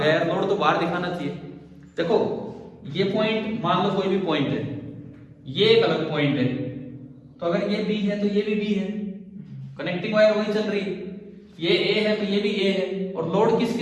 है, लोड तो बाहर दिखाना चाहिए। देखो ये पॉइंट मान लो कोई भी पॉइंट है, ये एक अलग पॉइंट है, तो अगर ये बी है तो ये भी बी है, कनेक्टिंग वायर वही चल रही है, ये ए है तो ये भी ए है, और लोड किस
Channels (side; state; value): both; identical; correlation 1.00